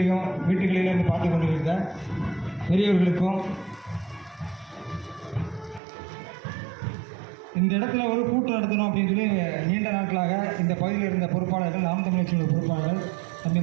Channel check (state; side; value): drops out; left; at 5.8 s